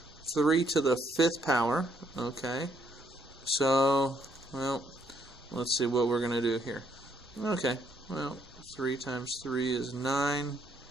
5th power. Okay, so, well, let's see what we're going to do here. Okay, well, 3 times 3 is 9,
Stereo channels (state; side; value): noise; right; rumble, 28 dB below the sound